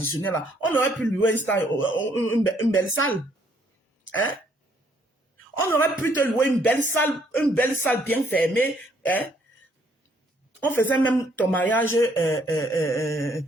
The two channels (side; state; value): both; normal; correlation 0.67